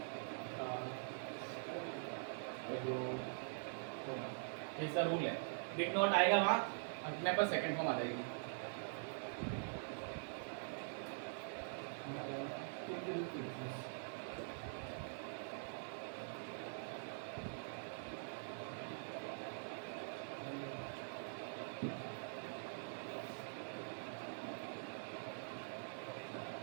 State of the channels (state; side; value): silent; left; digital silence